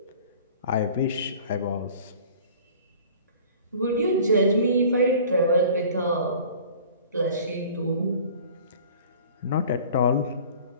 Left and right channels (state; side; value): inverted; both; correlation -0.46